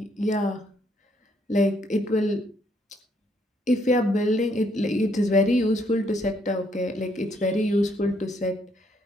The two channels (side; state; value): both; normal; correlation 0.71